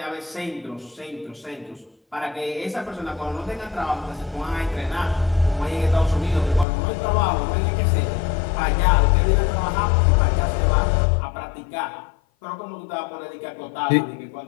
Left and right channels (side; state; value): right; drops out; at 6.7 s